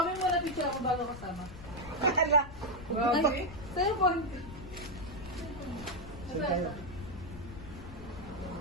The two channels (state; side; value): noise; left; rumble, 13 dB below the sound